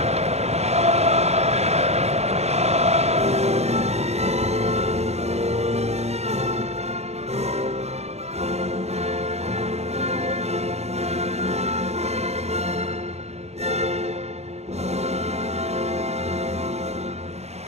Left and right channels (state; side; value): late; left; 0.31 ms